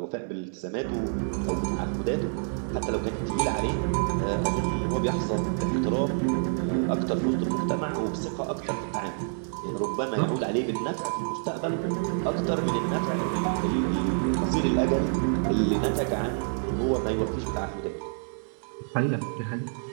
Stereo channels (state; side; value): silent; left; 60 dB below the other